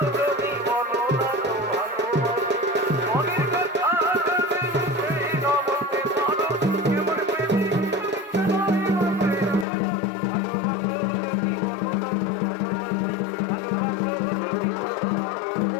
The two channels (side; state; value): right; drops out; at 9.7 s